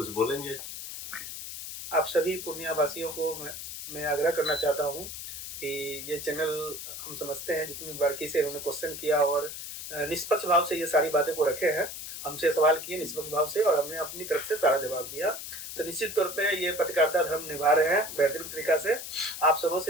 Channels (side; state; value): left; noise; hiss, 9 dB below the sound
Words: बोलेंगे? आप सभी पूर्णिया वासियों को मैं आग्रह करना चाहता हूं कि ये चैनल, हम समझते हैं जितनी बारीकी से उन्होंने क्वेश्चन किया और निष्पक्ष भाव से ये सारी बातें को रखे हैं, हमसे सवाल किए निष्पक्ष भाव से और हमने अपनी तरफ से सारा जवाब दिया। तो निश्चित तौर पे ये पत्रकारिता धर्म निभा रहे हैं बेहतरीन तरीका से। आप सबों